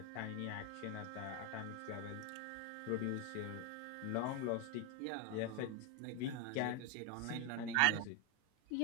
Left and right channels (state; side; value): different; both; correlation 0.01